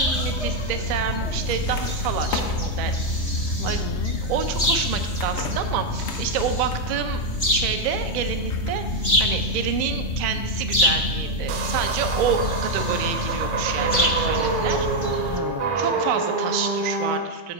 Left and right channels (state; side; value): late; right; 3.3 ms